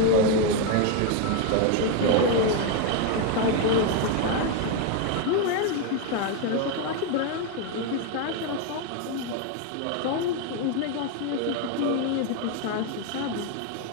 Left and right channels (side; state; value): both; different; correlation 0.01